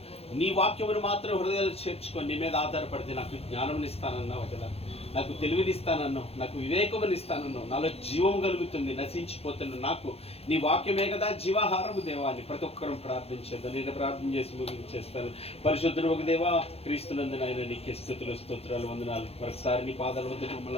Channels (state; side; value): late; right; 0.29 ms